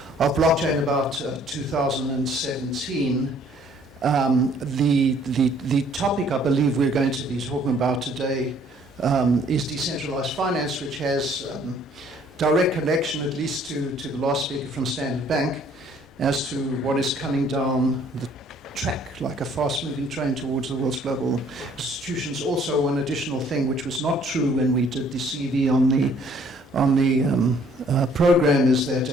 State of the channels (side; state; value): both; normal; correlation 0.60